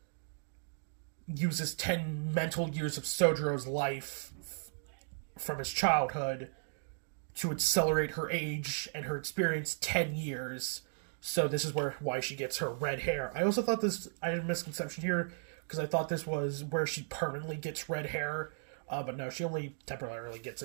uses 10 mental years of Sojiro's life from his childhood to accelerate her age and her experience 10 years. So this is why she gets her red hair. I also thought I had a misconception here, because I thought this was where she permanently gets red hair. But no, she only temporarily gets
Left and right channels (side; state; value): left; silent; digital silence